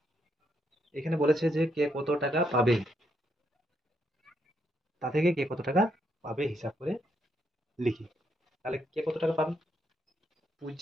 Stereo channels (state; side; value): normal; both; correlation 0.77